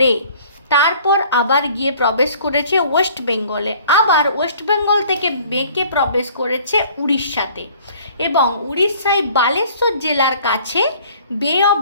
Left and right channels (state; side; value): inverted; both; correlation -0.53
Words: তারপর আবার গিয়ে প্রবেশ করেছে ওয়েস্ট বেঙ্গলে, আবার ওয়েস্ট বেঙ্গল থেকে বেঁকে প্রবেশ করেছে উড়িষ্যাতে, এবং উড়িষ্যায় বালেশ্বর জেলার কাছে বে অফ